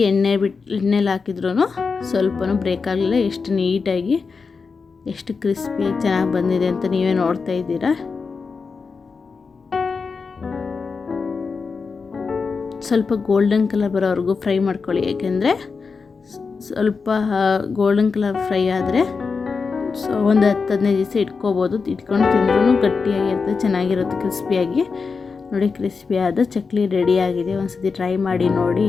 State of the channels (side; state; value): right; quieter; 4.9 dB